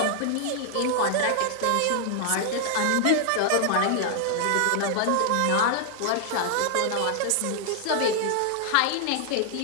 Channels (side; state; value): both; different; correlation 0.00